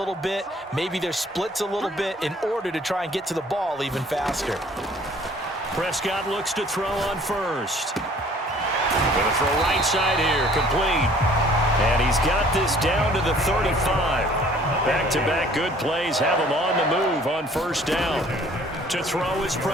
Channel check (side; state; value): both; normal; correlation 0.55